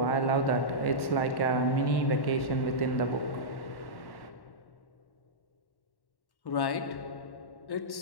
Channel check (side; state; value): right; late; 1.1 ms